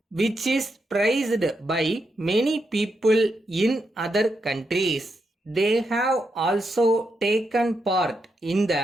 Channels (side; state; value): both; normal; correlation 0.83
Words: which is praised by many people in other countries. They have also taken part in